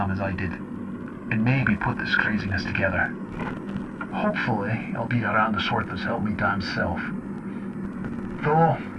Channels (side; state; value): both; identical; correlation 1.00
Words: as I did, and maybe put this craziness together. Hopefully, I'll be around the sort that's helped me damn self. Though,